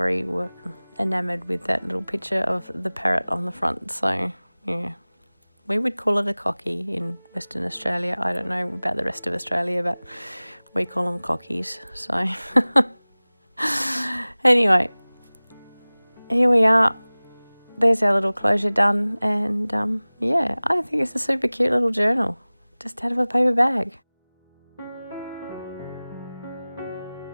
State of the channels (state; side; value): inverted; both; correlation -0.99